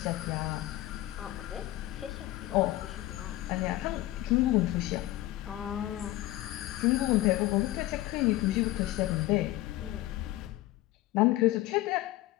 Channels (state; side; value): quieter; right; 16.5 dB